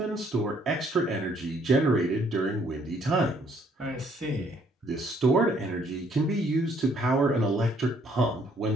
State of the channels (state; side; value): normal; both; correlation 0.65